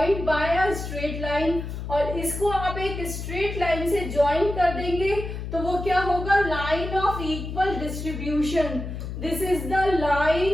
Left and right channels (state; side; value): noise; left; hum, 7 dB below the sound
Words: by a straight line. और इसको आप एक स्ट्रेट लाइन से ज्वाइन कर देंगे तो वो क्या होगा, line of equal distribution. This is the